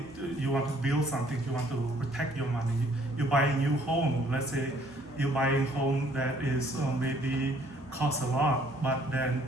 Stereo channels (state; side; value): normal; both; correlation 0.61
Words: you want to build something, you want to protect your money. You buy a new home, let's say you buy a home that is maybe costs a lot, but then